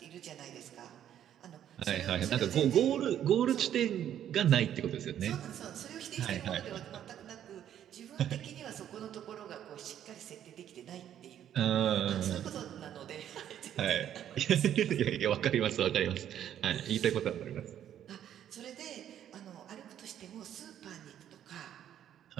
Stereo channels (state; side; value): quieter; left; 10.4 dB